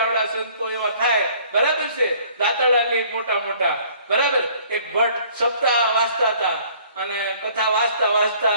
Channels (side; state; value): both; inverted; correlation -0.56